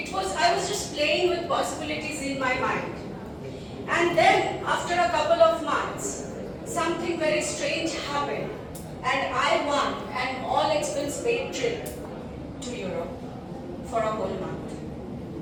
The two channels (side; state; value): both; identical; correlation 1.00